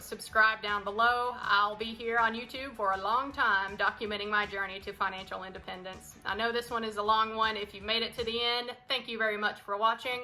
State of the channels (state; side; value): identical; both; correlation 1.00